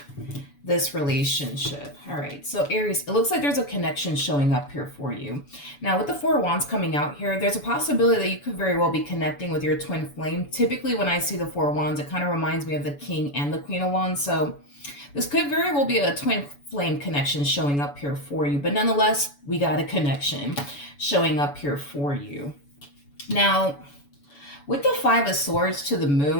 this relationship? All right, so Aries, it looks like there's a connection showing up here for you. Now, with the Four of Wands coming out here, there's a possibility that you could very well be connecting with your twin flame. Typically, when I see the Four of Wands, it kind of reminds me of the King and the Queen of Wands. So this could very well be a twin flame connection showing up here for you. But nonetheless, we got a connection showing up here for you. Now, with the Five of Swords to the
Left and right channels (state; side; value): late; right; 7.0 ms